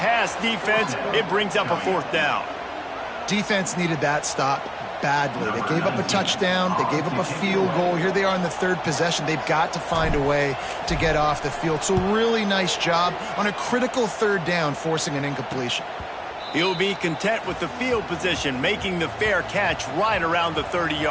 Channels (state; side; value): identical; both; correlation 1.00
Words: defense. It brings up a fourth down. Defense needed that stop badly. They gave up a touchdown. They gave up a field goal. Here they are in the third possession. They've got to find a way to get off the field. So really nice job on a critical third down, forcing an incompletion. He'll be content with the field position, making the fair catch right around the